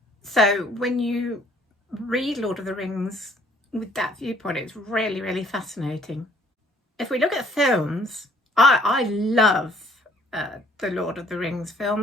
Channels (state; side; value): normal; both; correlation 0.60